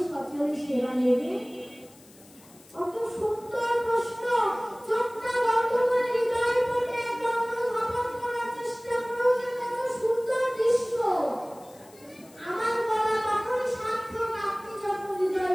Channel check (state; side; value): noise; left; hiss, 25 dB below the sound